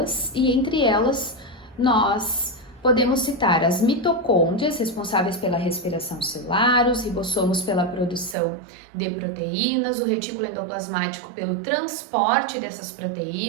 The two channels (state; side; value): drops out; left; at 8.3 s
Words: e entre elas nós podemos citar as mitocôndrias, responsáveis pela respiração celular, os ribossomos pela produção de proteínas, o retículo endoplasmático pelo transporte dessas